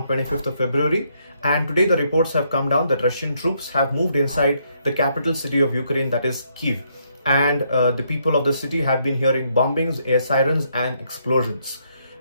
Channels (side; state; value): both; inverted; correlation -0.73